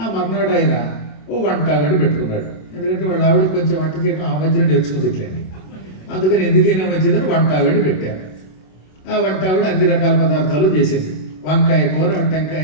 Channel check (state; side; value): late; right; 27 ms